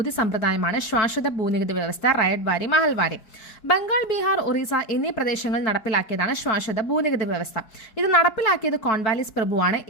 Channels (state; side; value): late; right; 4.6 ms